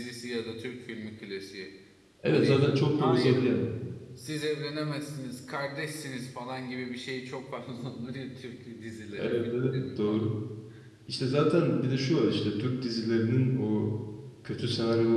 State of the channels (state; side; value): identical; both; correlation 1.00